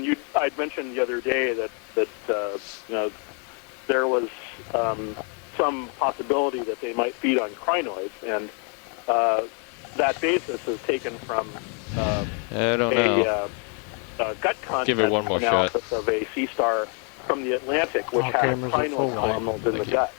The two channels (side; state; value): right; quieter; 39.4 dB